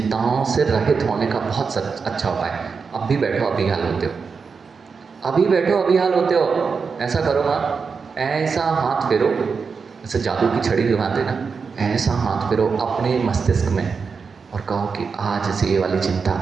से रहित होने का बहुत अच्छा उपाय है। अब भी बैठो, अभी हाल होते हो, अभी बैठो, अभी हाल होते हो। ऐसा करो माँ, ऐसा हाथ फेरो, जैसे जादू की छड़ी घुमाते ना, ऐसा हाथ फेरो अपने मस्तिष्क में और कहो कि आज से ये वाली चिंता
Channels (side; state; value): left; quieter; 5.3 dB